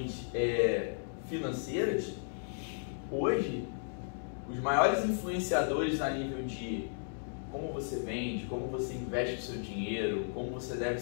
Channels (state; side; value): silent; right; digital silence